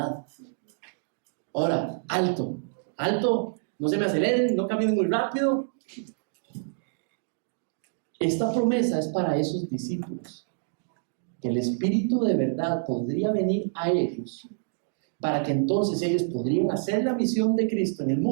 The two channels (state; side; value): silent; left; digital silence